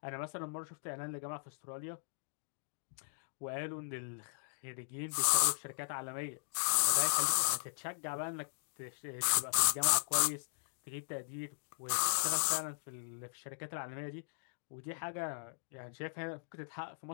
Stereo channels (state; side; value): silent; right; digital silence